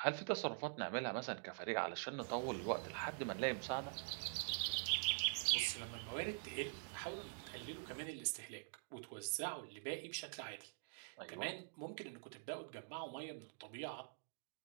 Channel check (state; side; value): silent; left; digital silence